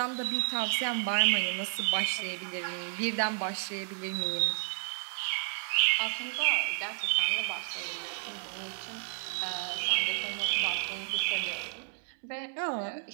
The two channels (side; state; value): left; silent; digital silence